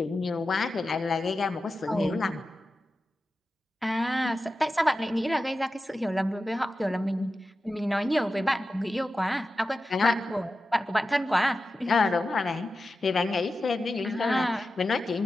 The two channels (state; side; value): normal; both; correlation 0.92